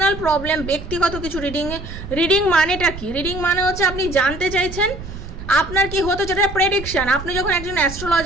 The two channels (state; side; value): noise; right; rumble, 11 dB below the sound